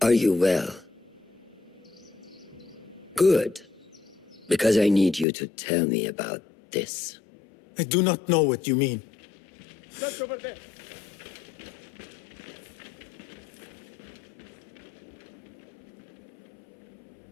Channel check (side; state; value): right; drops out; at 5.2 s